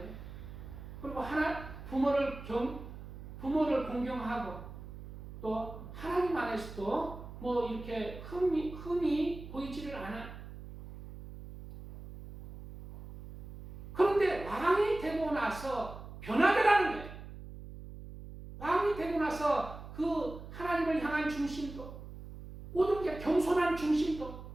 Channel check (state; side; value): noise; right; hum, 13 dB below the sound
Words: 그리고 부모를 공경하고 또 하나님 안에서도 뭐 이렇게 흠이 보이지를 않아. 그런데 왕이 되고 나서 변하더라는 거예요. 왕이 되고 나서 그 하나님을 향한 중심도 모든 게 겸손한 중심도